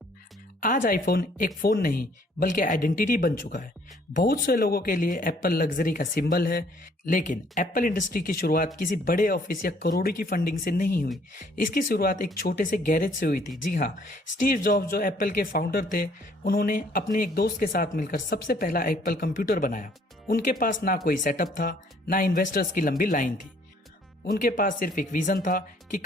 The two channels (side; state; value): both; normal; correlation 0.62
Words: आज आईफोन एक फोन नहीं बल्कि आइडेंटिटी बन चुका है। बहुत से लोगों के लिए एप्पल लग्जरी का सिंबल है, लेकिन एप्पल इंडस्ट्री की शुरुआत किसी बड़े ऑफिस या करोड़ों की फंडिंग से नहीं हुई। इसकी शुरुआत एक छोटे से गैरेज से हुई थी। जी हाँ, स्टीव जॉब्स जो एप्पल के फाउंडर थे, उन्होंने अपने एक दोस्त के साथ मिलकर सबसे पहला एप्पल कंप्यूटर बनाया। उनके पास ना कोई सेटअप था, ना इन्वेस्टर्स की लंबी लाइन थी। उनके पास सिर्फ एक विजन था कि